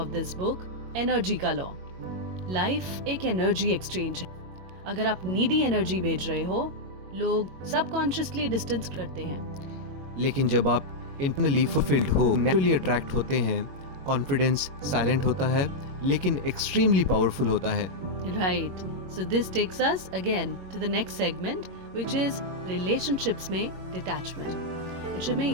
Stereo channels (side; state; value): left; late; 22 ms